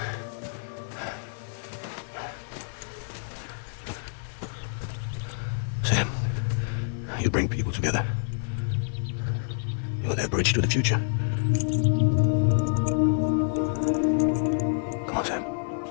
You bring people together. You're their bridge to the future. Come on, Sam.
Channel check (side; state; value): right; silent; digital silence